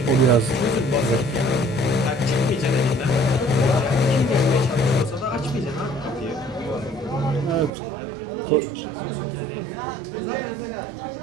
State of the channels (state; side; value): drops out; left; at 7.7 s